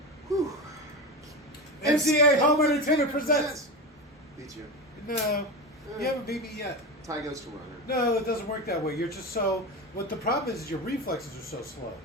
Whew. MCA Home Entertainment presents. Beat you. No, you haven't beat me yet. Tie goes to runner. No, it doesn't work that way. You're just so. What the problem is your reflexes are so slow.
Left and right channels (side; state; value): both; normal; correlation 0.22